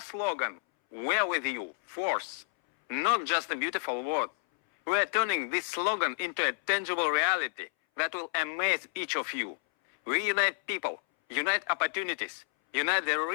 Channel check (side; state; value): right; silent; 58 dB below the other